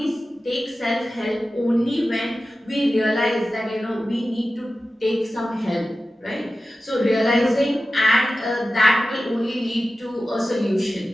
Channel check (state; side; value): normal; both; correlation 0.94